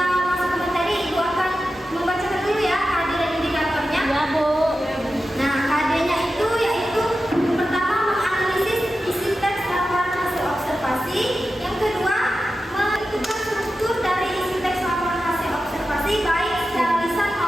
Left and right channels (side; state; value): both; normal; correlation 0.92